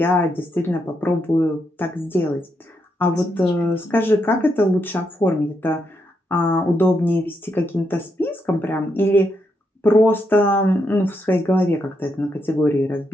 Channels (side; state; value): both; normal; correlation 0.80